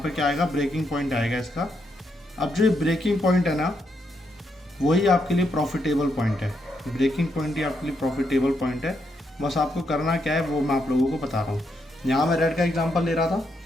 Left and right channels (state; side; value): normal; both; correlation 0.79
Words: क्या आएगा, ब्रेकिंग पॉइंट आएगा इसका। अब जो ब्रेकिंग पॉइंट है ना वही आपके लिए प्रॉफिटेबल पॉइंट है। ब्रेकिंग पॉइंट ही आपके लिए प्रॉफिटेबल पॉइंट है। बस आपको करना क्या है वो मैं आप लोगों को बता रहा हूँ। यहाँ मैं रेड का एग्जांपल ले रहा था